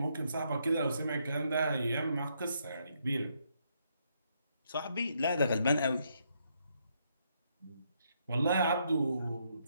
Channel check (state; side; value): inverted; both; correlation -0.75